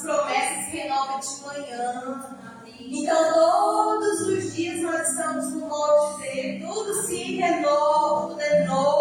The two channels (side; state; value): both; identical; correlation 1.00